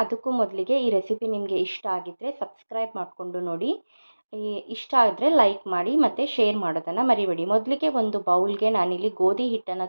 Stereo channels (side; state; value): both; inverted; correlation -1.00